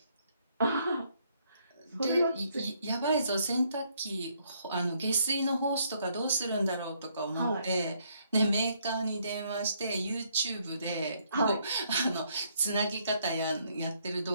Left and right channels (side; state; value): both; inverted; correlation -0.70